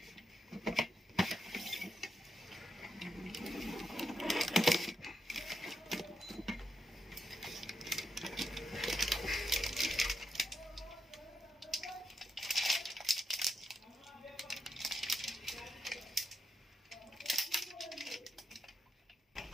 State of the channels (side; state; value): both; normal; correlation 0.81